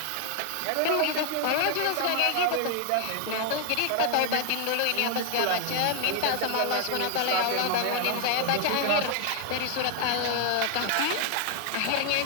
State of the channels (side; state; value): both; different; correlation 0.00